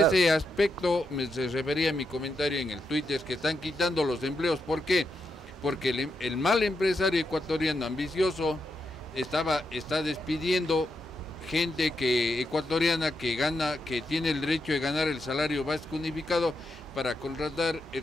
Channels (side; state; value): both; normal; correlation 0.83